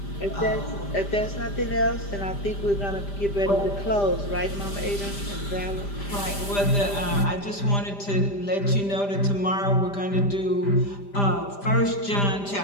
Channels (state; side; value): late; right; 5.0 ms